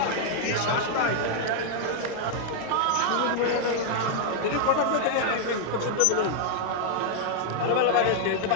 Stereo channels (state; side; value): different; both; correlation 0.00